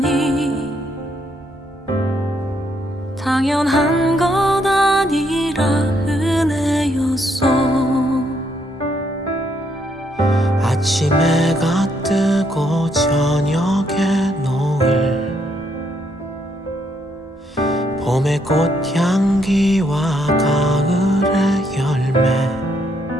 당연한 것 아니라 은혜였어. 아침 해가 뜨고 저녁에 노을, 봄의 꽃향기와 가을의 열매,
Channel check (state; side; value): normal; both; correlation 0.74